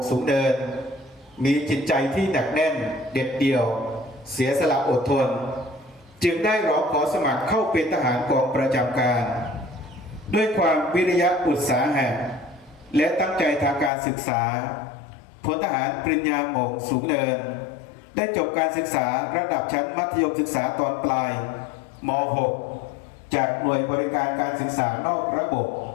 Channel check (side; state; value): right; drops out; at 13.9 s